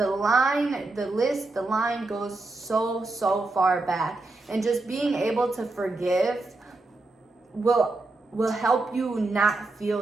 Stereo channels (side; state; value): left; quieter; 3.2 dB